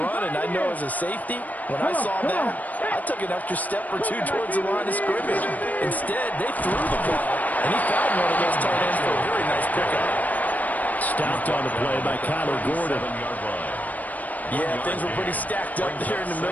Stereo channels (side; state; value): right; late; 0.077 ms